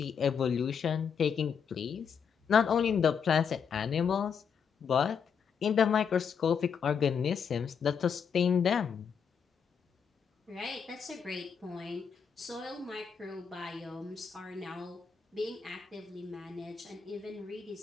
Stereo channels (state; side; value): quieter; right; 6.8 dB